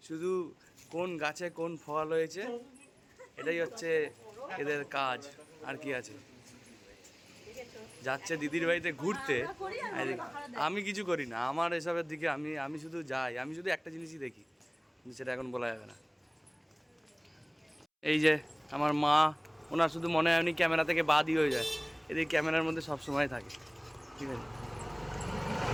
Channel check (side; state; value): both; identical; correlation 1.00